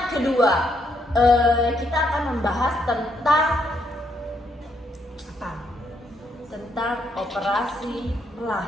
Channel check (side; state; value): both; normal; correlation 0.74